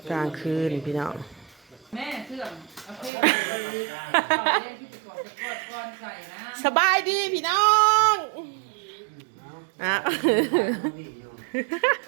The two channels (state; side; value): drops out; left; at 3.1 s